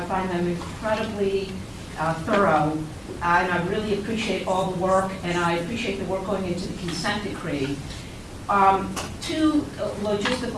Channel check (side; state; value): both; identical; correlation 1.00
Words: find them incredibly thorough, and I really appreciate all the work, and I appreciate the work going into the consent decree. Two